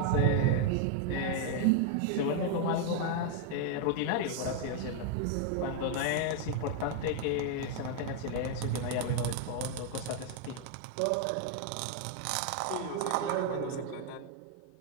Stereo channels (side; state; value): both; different; correlation 0.00